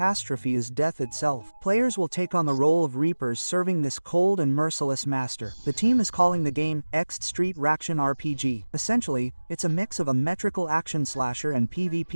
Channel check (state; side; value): inverted; both; correlation -1.00